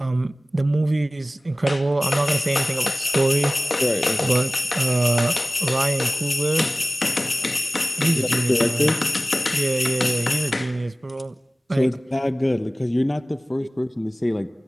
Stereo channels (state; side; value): normal; both; correlation 0.97